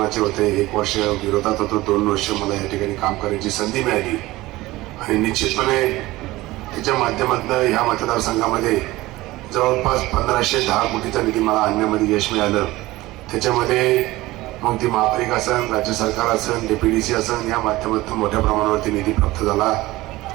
होते, 1 वर्ष विरोधात होतो, 2 वर्ष मला या ठिकाणी काम करण्याची संधी मिळाली. आणि निश्चितपणे त्याच्या माध्यमातून ह्या मतदारसंघामध्ये जवळपास 1510 कोटीचा निधी मला आणण्यामध्ये यश मिळालं. त्याच्यामध्ये मग ती महापालिका असेल, राज्य सरकार असेल, DPDC असेल, या माध्यमातून मोठ्या प्रमाणावरती निधी प्राप्त झाला.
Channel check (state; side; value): quieter; left; 18.7 dB